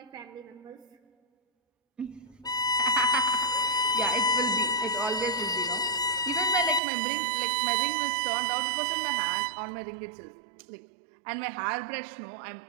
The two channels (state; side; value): drops out; left; at 6.8 s